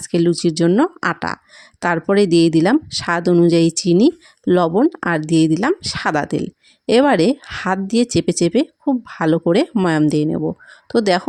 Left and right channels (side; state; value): both; identical; correlation 1.00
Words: লুচির জন্য আটা। তারপরে দিয়ে দিলাম স্বাদ অনুযায়ী চিনি, লবণ, আর দিয়ে দিলাম সাদা তেল। এবারে হাত দিয়ে চেপে চেপে খুব ভালো করে ময়াম দিয়ে নেব। তো